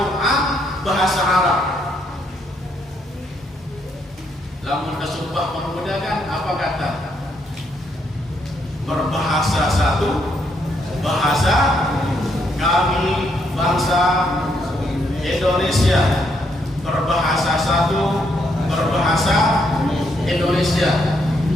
bahasa Arab. Lamun kesumpah pemuda kan apa kata? Berbahasa satu, bahasa kami bangsa Indonesia. Berbahasa satu, berbahasa Indonesia.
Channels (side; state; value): both; normal; correlation 0.75